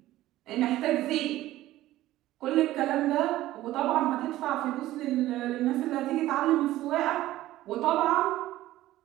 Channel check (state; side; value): quieter; left; 15.4 dB